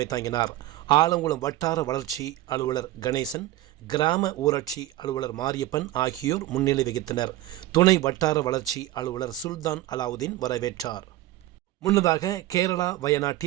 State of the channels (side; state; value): left; quieter; 15.5 dB